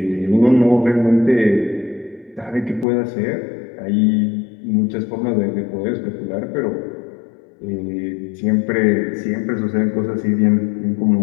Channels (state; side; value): drops out; right; at 2.9 s